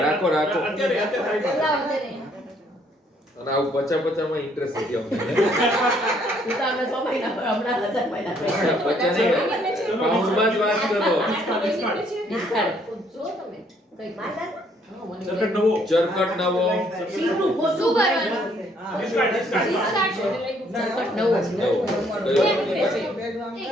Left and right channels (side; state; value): both; normal; correlation 0.66